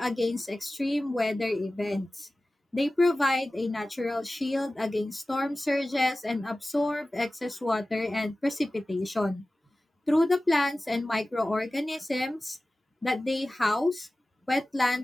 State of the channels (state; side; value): normal; both; correlation 0.96